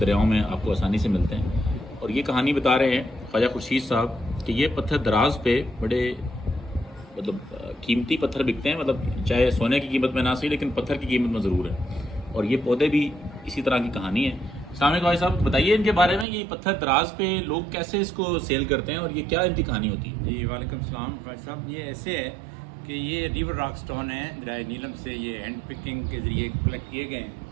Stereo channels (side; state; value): left; drops out; at 16.2 s